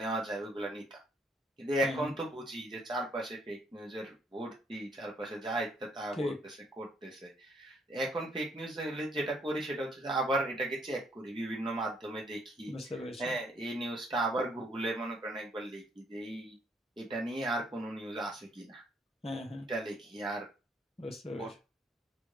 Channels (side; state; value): both; normal; correlation 0.68